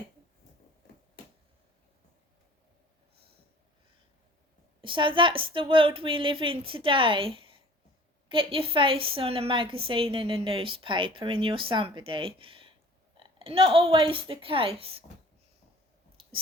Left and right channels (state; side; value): normal; both; correlation 0.48